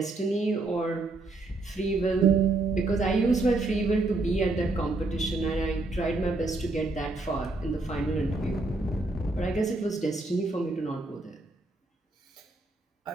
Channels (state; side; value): quieter; left; 3.1 dB